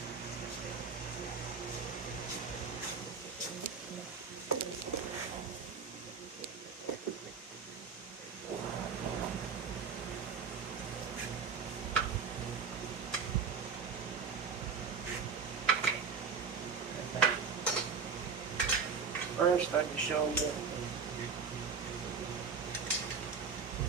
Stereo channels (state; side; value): quieter; left; 5.8 dB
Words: First, I can show you.